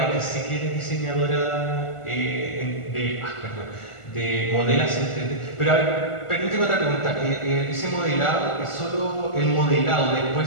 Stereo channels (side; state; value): right; late; 1.4 ms